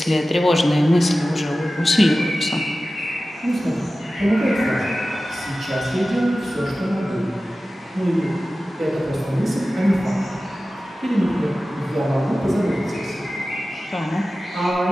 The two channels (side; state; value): both; normal; correlation 0.95